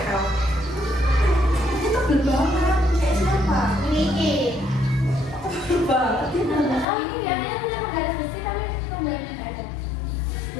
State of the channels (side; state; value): right; drops out; at 6.9 s